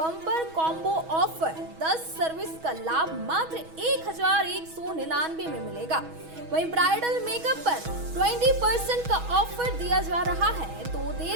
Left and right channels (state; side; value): late; left; 6.2 ms